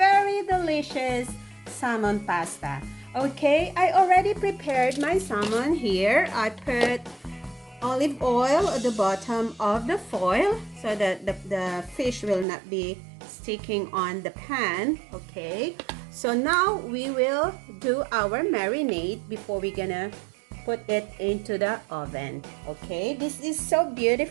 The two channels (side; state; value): left; drops out; at 12.5 s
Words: delicious salmon pasta. Okay, I already prepared my salmon here. I put olive oil at the bottom of the foil so that the fish will not be sticking on the pan. Okay, so now we will do our marinade before we're gonna put it into the oven. Okay, this is so